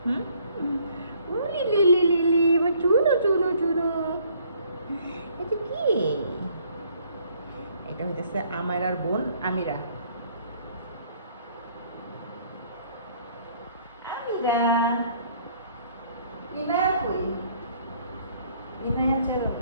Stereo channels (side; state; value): both; inverted; correlation -0.62